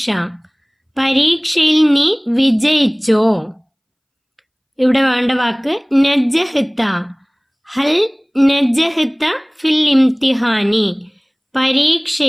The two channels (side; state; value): both; identical; correlation 1.00